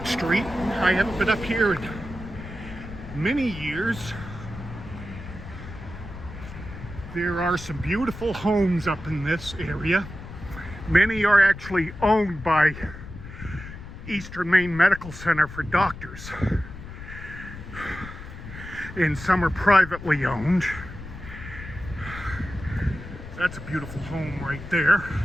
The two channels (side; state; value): left; noise; rumble, 12 dB below the sound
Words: Street. I haven't been up here in many years. There are some beautiful homes up in this area. Many are actually owned by Eastern Maine Medical Center for doctors, and some are privately owned. That's a beautiful home right there.